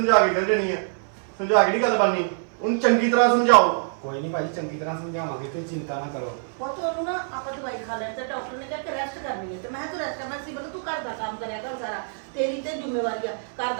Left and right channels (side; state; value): left; silent; 58 dB below the other